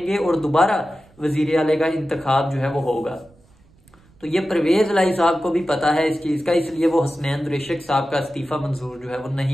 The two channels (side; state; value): right; noise; rumble, 29 dB below the sound